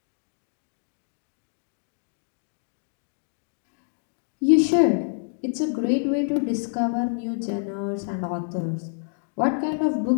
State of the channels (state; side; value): silent; right; digital silence